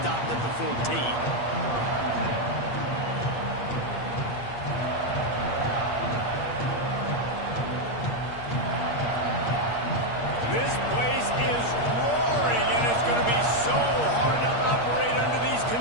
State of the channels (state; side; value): late; right; 8.5 ms